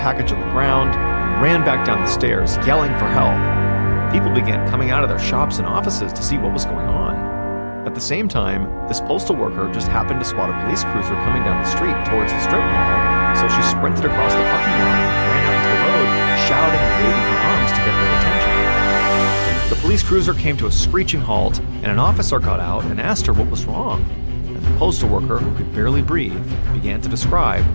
on the ground, and ran back down the stairs, yelling for help. People began coming out of their shops and offices to see what was going on. At the same time, this postal worker just happened to spot a police cruiser coming down the street towards the strip mall, so she sprinted across the parking lot and ran out into the road, shouting and waving her arms to get their attention. The police cruiser came to a screeching halt, and an officer got out and asked her what was wrong. And the postal worker, who could barely breathe, began to describe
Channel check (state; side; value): inverted; both; correlation -1.00